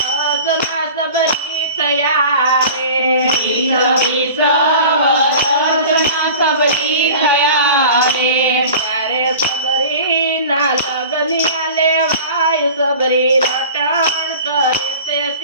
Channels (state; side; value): inverted; both; correlation -0.39